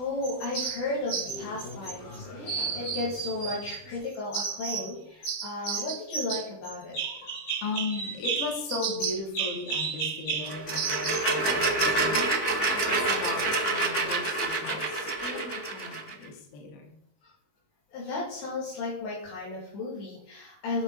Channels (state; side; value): late; right; 20 ms